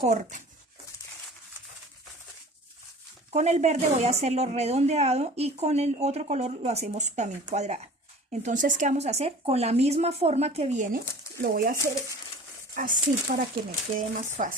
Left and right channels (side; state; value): both; normal; correlation 0.43